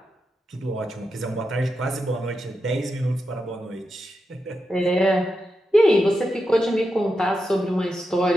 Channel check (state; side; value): normal; both; correlation 0.87